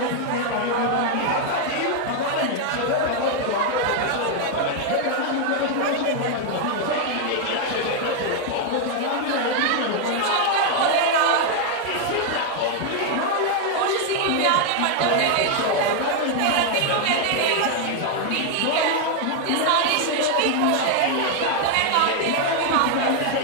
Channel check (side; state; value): both; different; correlation 0.00